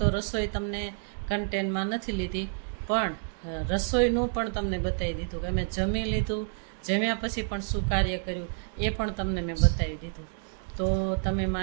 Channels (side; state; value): left; silent; 59 dB below the other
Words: રસોઈ તમને કન્ટેન્ટમાં નથી લીધી, પણ રસોઈનું પણ તમને બતાવી દીધું કે મેં જમી લીધું, જમ્યા પછી પણ શું કાર્ય કર્યું એ પણ તમને મેં બતાવી દીધું. તો તમે